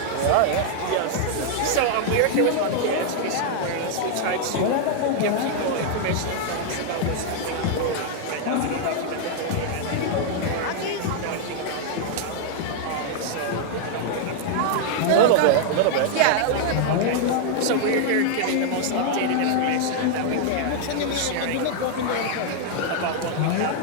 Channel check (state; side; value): different; both; correlation -0.01